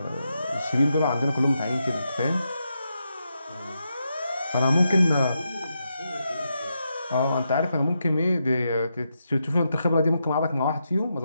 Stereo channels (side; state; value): both; inverted; correlation -0.84